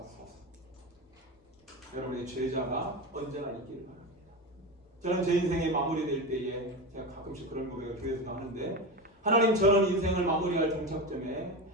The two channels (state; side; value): normal; both; correlation 0.21